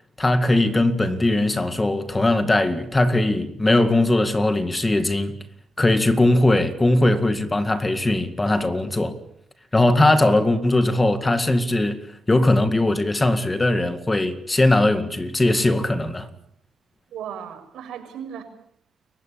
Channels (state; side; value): normal; both; correlation 0.95